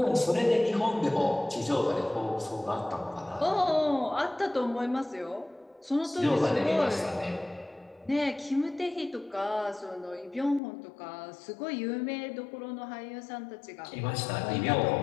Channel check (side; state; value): right; drops out; at 10.6 s